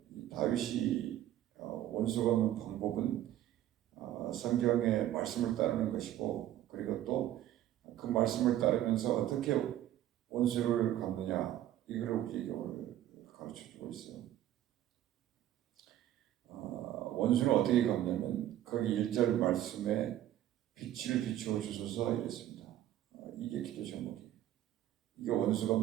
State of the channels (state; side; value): quieter; left; 12.7 dB